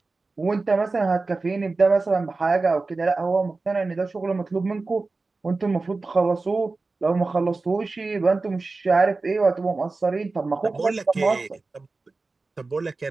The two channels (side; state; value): left; quieter; 3.7 dB